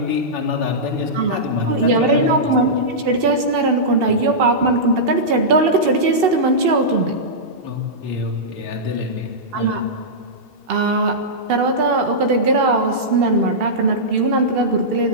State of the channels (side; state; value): left; late; 2.7 ms